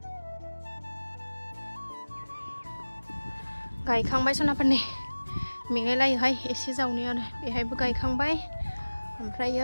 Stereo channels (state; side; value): inverted; both; correlation -1.00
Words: गायखांबाय सनाफोरनि मेंलायलायोहाय एसे जावनायावनो बेहायबो गायखांबाय